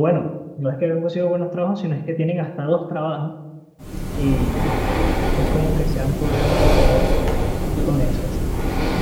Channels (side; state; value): both; identical; correlation 1.00